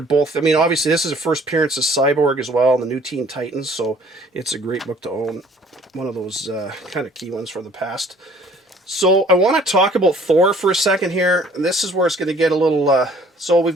I mean, obviously, this is a first appearance of Cyborg as well, and the New Teen Titans. So it's a great book to own. One of those kind of key ones from the past. So I want to talk about Thor for a second here. And this is where it's going to get a little... so we've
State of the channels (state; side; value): normal; both; correlation 0.57